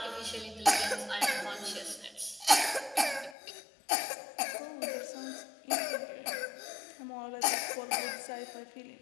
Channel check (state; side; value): drops out; right; at 3.4 s